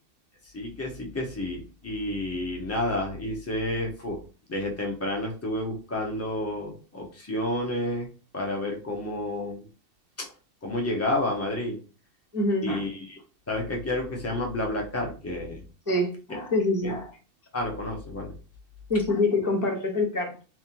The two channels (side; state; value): left; late; 2.7 ms